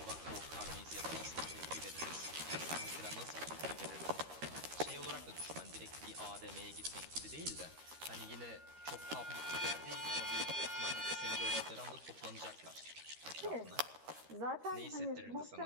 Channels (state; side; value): late; left; 13 ms